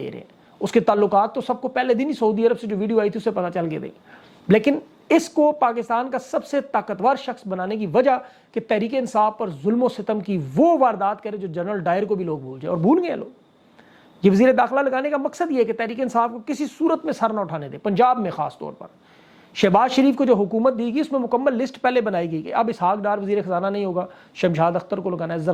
रहे हैं। उसके ताल्लुकात तो सबको पहले दिन ही सऊदी अरब से जो वीडियो आई थी उससे पता चल गए थे। लेकिन इसको पाकिस्तान का सबसे ताकतवर शख्स बनाने की वजह कि तहरीक इंसाफ पर जुल्म सितम की वो वारदात करे जो जनरल डायर को भी लोग भूल जाए, और भूल गए लोग। ये वजीर दाखिला लगाने का मकसद ये है कि तहरीक इंसाफ को किसी सूरत में सर न उठाने दे। पंजाब में खास तौर पर शहबाज शरीफ को जो हुकूमत दी गई उसमें मुकम्मल लिस्ट पहले बनाई गई कि अब इसहाक डार वजीर खजाना नहीं होगा, शमशाद अख्तर को लगाना है।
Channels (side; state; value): both; identical; correlation 1.00